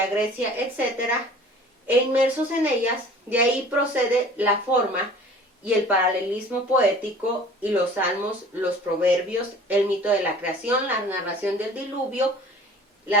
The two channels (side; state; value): both; normal; correlation 0.46